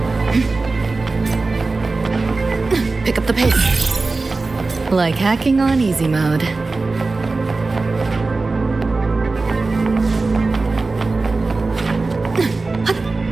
Pick up the pace. Like hacking on easy mode.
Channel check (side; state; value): left; quieter; 3.6 dB